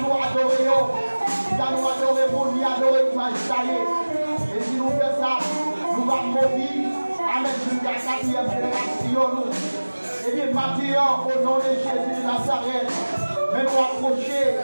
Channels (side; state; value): both; inverted; correlation -1.00